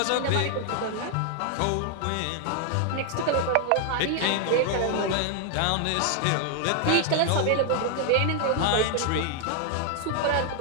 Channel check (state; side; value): different; both; correlation 0.00